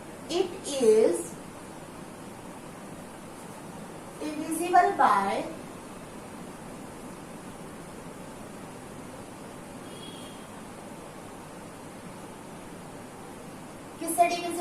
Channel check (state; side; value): identical; both; correlation 1.00